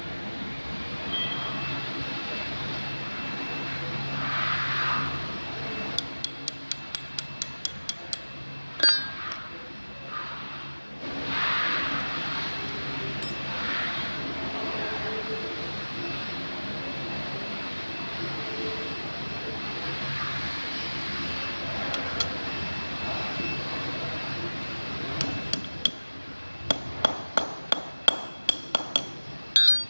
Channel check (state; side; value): inverted; both; correlation -1.00